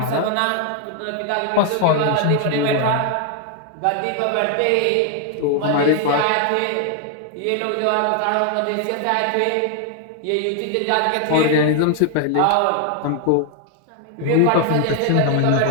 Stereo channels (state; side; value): different; both; correlation 0.00